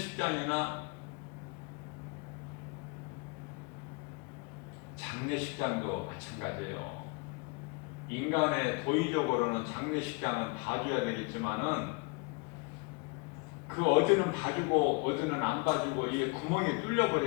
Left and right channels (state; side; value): quieter; right; 30.1 dB